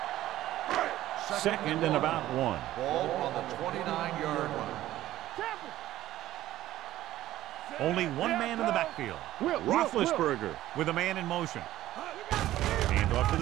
Second and about 1. Ball on the 29-yard line. Only one man in the backfield. Roethlisberger with a man in motion. Hand off to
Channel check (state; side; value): quieter; left; 14.3 dB